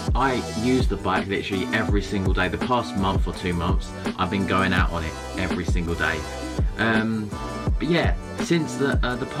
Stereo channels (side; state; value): both; identical; correlation 1.00